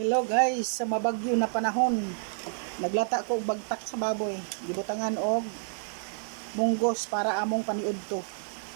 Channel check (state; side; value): silent; left; digital silence